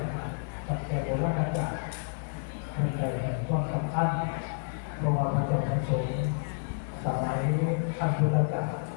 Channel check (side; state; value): right; silent; 58 dB below the other